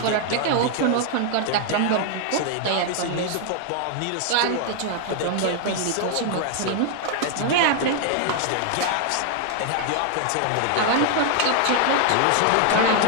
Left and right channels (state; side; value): different; both; correlation 0.00